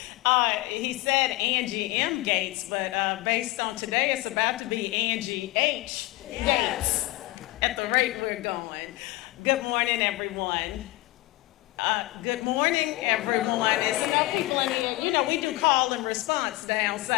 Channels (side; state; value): right; quieter; 19.8 dB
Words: He said Angie M. Gates, but based on today, it's about to be Angie H. Gates at the rate we're going. Good morning, everyone. Good morning, everyone. We do call and response down